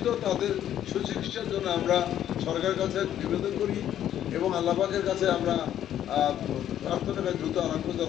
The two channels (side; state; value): right; quieter; 11.0 dB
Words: তাদের সুচিকিৎসার জন্য আমরা সরকারের কাছে নিবেদন করি এবং আল্লাহ পাকের কাছে আমরা প্রার্থনা করি দ্রুত আরোগ্য